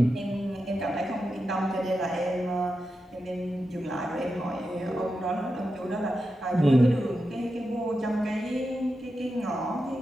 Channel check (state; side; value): normal; both; correlation 0.89